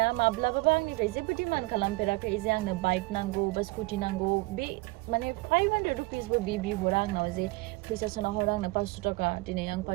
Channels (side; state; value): left; quieter; 22.9 dB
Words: माब्लाबाबो आंनिफ्राय जेबो डिमान्ड खालामफेराखै जे आंनो बाइक नांगौ बा स्कुटि नांगौ। बे माने 500 रुपिसबो बिहरा आंनाव जे फैसा सोना हर आंनो 500 थाखा, दिनै आं